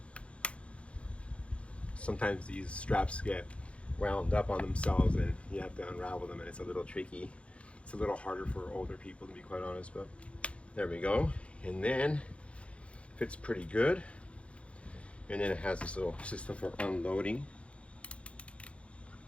Sometimes these straps get wound up on themselves and you have to unravel them, and it's a little tricky. It's a little harder for older people, to be quite honest, but there we go. And then fits pretty good. And then it has this little system for unloading.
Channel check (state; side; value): late; right; 0.061 ms